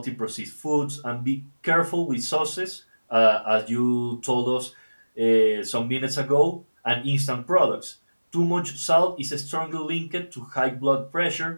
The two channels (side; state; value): both; inverted; correlation -1.00